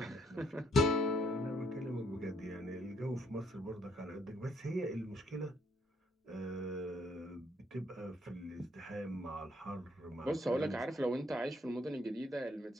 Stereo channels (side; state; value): both; normal; correlation 0.69